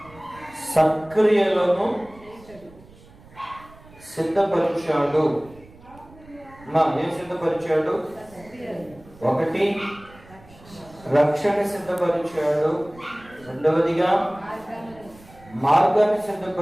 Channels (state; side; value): noise; right; rumble, 23 dB below the sound